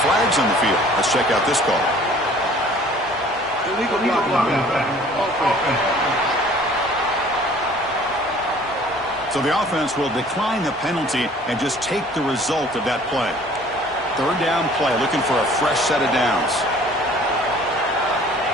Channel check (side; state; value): both; normal; correlation 0.52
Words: on the field. Let's check out this call. Illegal offense. So the offense will decline the penalty and just take the result of that play. Third down play, looking for a fresh set of downs.